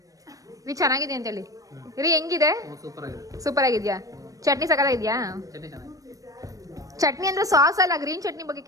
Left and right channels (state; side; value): late; left; 0.16 ms